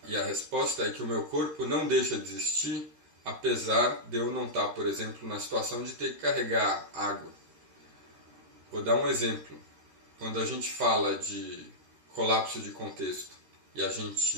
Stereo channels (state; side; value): late; left; 13 ms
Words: E a resposta é que o meu corpo não deixa de existir, apesar de eu não estar, por exemplo, na situação de ter que carregar água. Vou dar um exemplo. Quando a gente fala de colapso de contexto e a